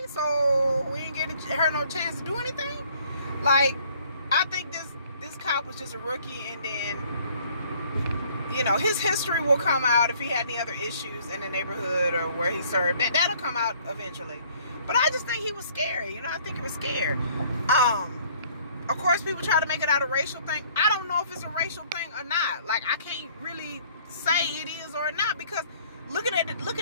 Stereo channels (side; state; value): both; inverted; correlation -0.58